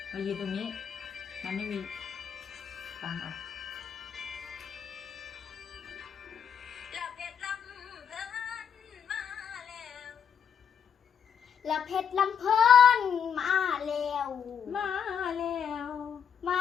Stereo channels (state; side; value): quieter; right; 7.7 dB